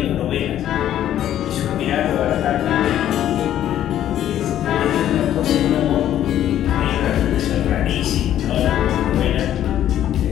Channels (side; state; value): right; quieter; 11.5 dB